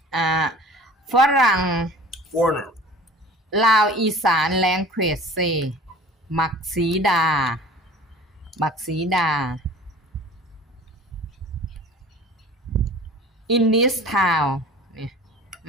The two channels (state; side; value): normal; both; correlation 0.43